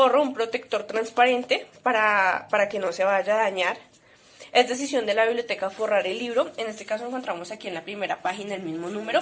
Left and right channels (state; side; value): identical; both; correlation 1.00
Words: un protector transparente para que no se vaya a dañar. Es decisión de la biblioteca forrar el libro. En este caso encontramos aquí en la primera página el mismo